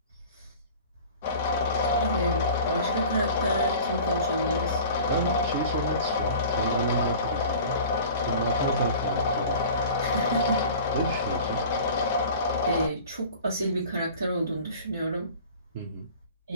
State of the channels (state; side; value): inverted; both; correlation -0.42